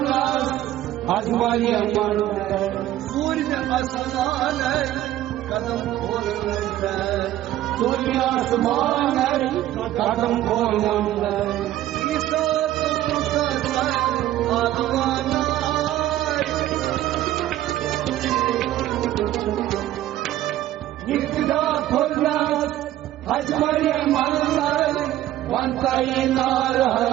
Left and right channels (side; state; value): left; quieter; 13.6 dB